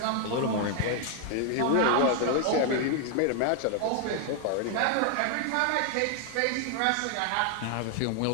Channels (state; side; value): different; both; correlation 0.00